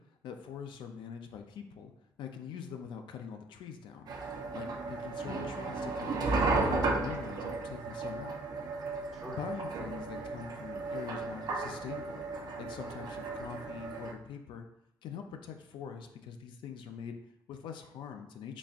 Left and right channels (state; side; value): normal; both; correlation 0.55